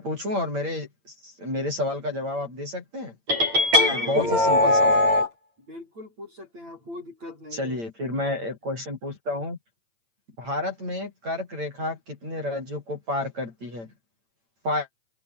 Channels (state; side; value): late; left; 8.8 ms